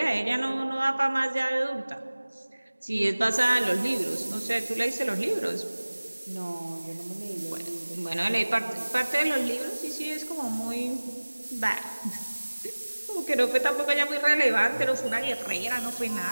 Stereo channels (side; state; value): both; inverted; correlation -1.00